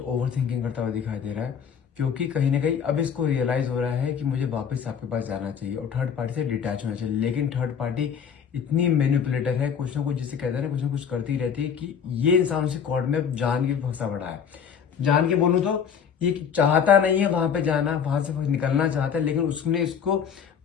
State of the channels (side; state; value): right; quieter; 7.4 dB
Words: थिंकिंग करता हुआ दिखाई दे रहा है। क्योंकि कहीं ना कहीं अब इसको रियलाइज हो रहा है कि मुझे वापस आपके पास जाना चाहिए और थर्ड पार्टी से डिटैच होना चाहिए। लेकिन थर्ड पार्टी इतनी मैनिपुलेटर है, कुछ ना कुछ जिसे कहते हैं ना, कुछ ना कुछ करती रहती है कि ये इंसान उसे कॉर्ड में जान के फंसा पड़ा है। जान के बोलूं तो ये चाहता नहीं है वहां पे जाना, वहां से निकलना चाहता है, लेकिन उसने इसको